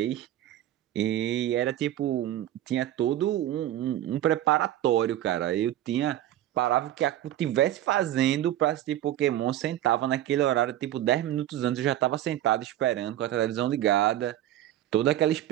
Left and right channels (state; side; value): quieter; left; 12.9 dB